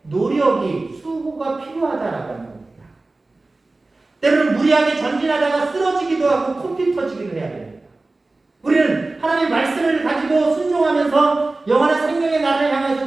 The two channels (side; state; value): left; quieter; 3.2 dB